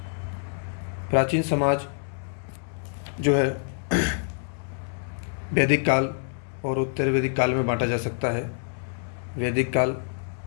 प्राचीन समाज जो है वैदिक काल और उत्तर वैदिक काल में बांटा जा सकता है। वैदिक काल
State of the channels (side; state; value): right; silent; 60 dB below the other